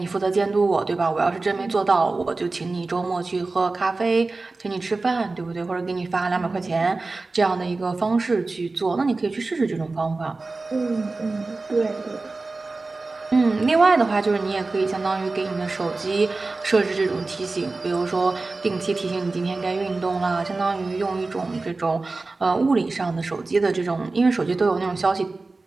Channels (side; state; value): left; quieter; 3.5 dB